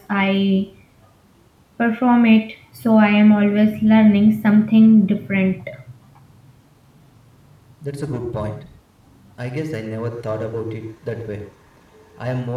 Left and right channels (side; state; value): both; identical; correlation 1.00